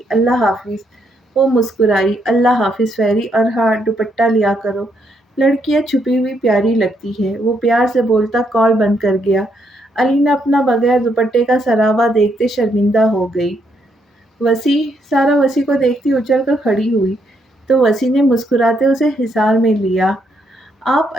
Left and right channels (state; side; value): normal; both; correlation 0.75